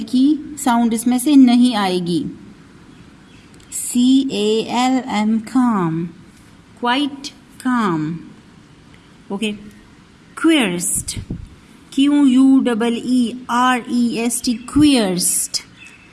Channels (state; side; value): identical; both; correlation 1.00